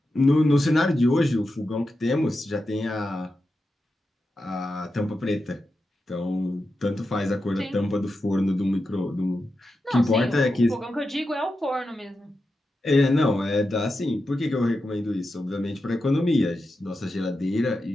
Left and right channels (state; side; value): normal; both; correlation 0.89